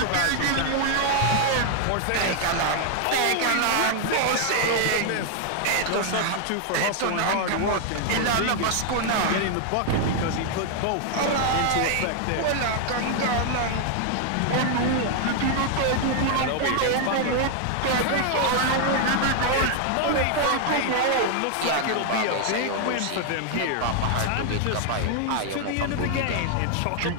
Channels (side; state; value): both; different; correlation 0.00